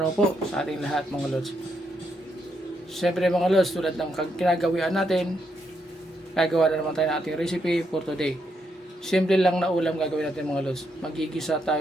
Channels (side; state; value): both; normal; correlation 0.79